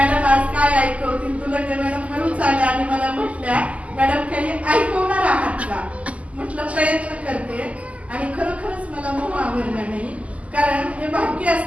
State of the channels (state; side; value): late; left; 0.068 ms